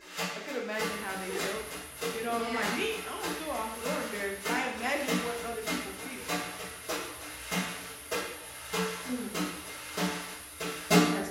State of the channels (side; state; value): both; identical; correlation 1.00